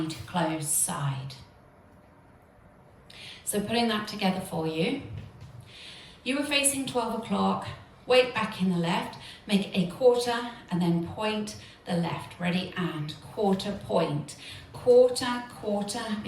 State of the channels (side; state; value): both; identical; correlation 1.00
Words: close, side. So putting that together for you, you were facing 12 o'clock, weight back in the left, make a quarter and then point the left. Ready, and quarter, point. Quarter, quarter,